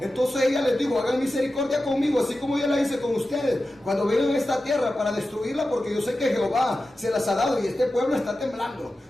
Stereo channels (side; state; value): both; normal; correlation 0.93